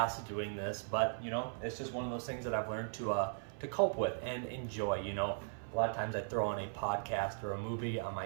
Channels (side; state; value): left; silent; 52 dB below the other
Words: doing this, but it's just one of those things that I've learned to cope with and enjoy. A lot of times I throw on a podcast or a movie on my